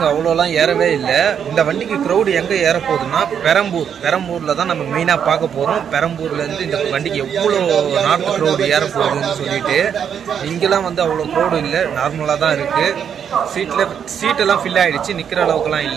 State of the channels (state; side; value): quieter; left; 8.0 dB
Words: அவ்வளோலாம் ஏறவே இல்லை. இந்த வண்டிக்கு க்ரௌடு எங்கே ஏற போகுதுன்னா பெரம்பூரில் தான் நம்ம மெயினாக பார்க்க போகிறோம். பெரம்பூர்லேருந்து இந்த வண்டிக்கு எவ்வளோ நார்த் க்ரௌடு ஏற போகுதுன்னு சொல்லிட்டு. இங்கெல்லாம் வந்து அவ்வளோ க்ரௌடு இல்லை, நார்மலாக தான் இருக்குது. சீட்டெல்லாம் ஃபில் ஆகிடுச்சு, நிற்கிற அளவுக்குலாம்